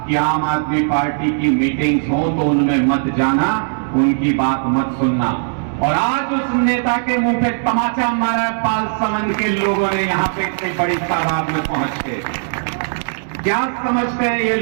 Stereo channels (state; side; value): silent; left; digital silence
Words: कि आम आदमी पार्टी की मीटिंग्स हो तो उनमें मत जाना, उनकी बात मत सुनना। और आज उस नेता के मुंह पे तमाचा मारा पाल समन के लोगों ने यहां पे इतनी बड़ी तादाद में पहुंच के। क्या समझते हैं ये